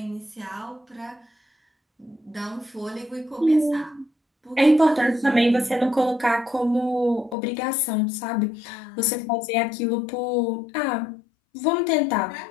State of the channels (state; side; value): drops out; right; at 7.4 s